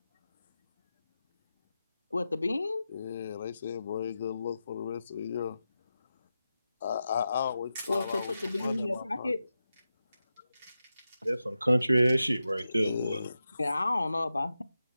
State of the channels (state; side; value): inverted; both; correlation -0.91